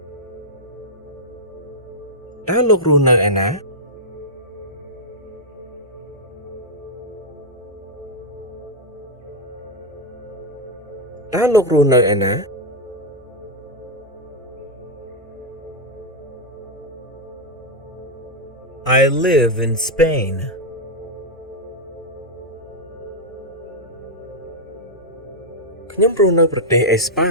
តើលោករស់នៅឯណា តើលោករស់នៅឯណា I live in Spain. ខ្ញុំរស់នៅប្រទេសអេស្ប៉ា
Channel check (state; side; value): normal; both; correlation -0.02